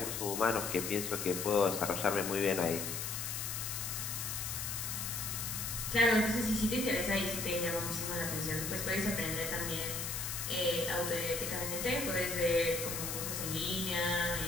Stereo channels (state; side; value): noise; left; hiss, 3 dB below the sound